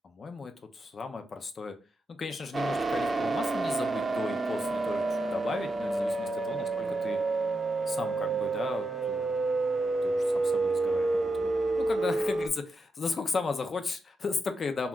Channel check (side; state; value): both; normal; correlation 0.86